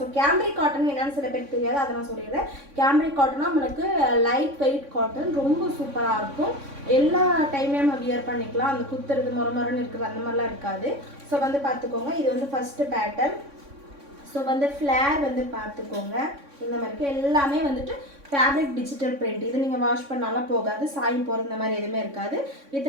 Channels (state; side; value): late; left; 3.6 ms